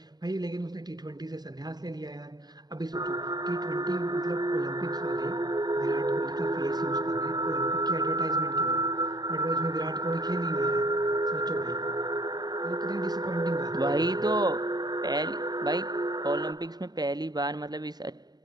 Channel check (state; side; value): late; left; 0.19 ms